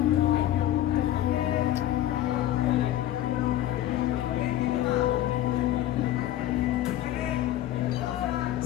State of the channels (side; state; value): right; quieter; 13.1 dB